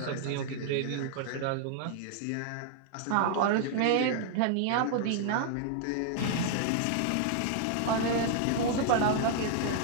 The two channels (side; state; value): both; different; correlation -0.01